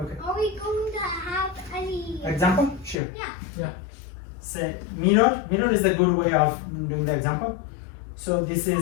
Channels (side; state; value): right; drops out; at 3.0 s